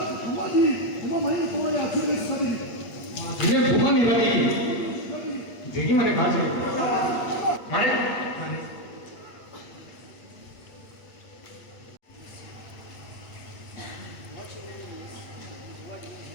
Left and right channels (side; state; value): right; late; 8.5 ms